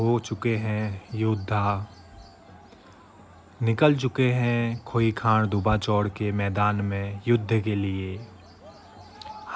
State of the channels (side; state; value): both; identical; correlation 1.00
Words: चुके हैं योद्धा, निकल चुके हैं खोई खान दुबा चौड़ के मैदान में युद्ध के लिए।